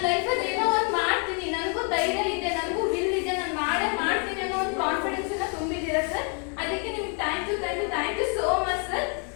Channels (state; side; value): quieter; right; 40.0 dB